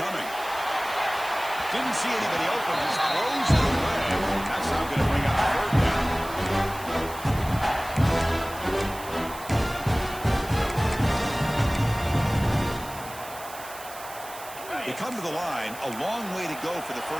Didn't see anybody open. Just throws it away. That's now going to bring up 3rd down. They come to the line. A long way to go for the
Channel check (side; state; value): right; noise; hiss, 15 dB below the sound